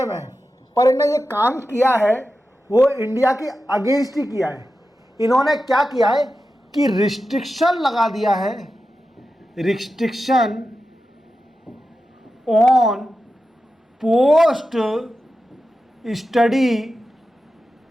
है, पर इन्होंने ये काम किया है वो इंडिया के अगेंस्ट ही किया है। इन्होंने क्या किया है कि रिस्ट्रिक्शन लगा दिया है, restriction on post study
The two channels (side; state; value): both; normal; correlation 0.91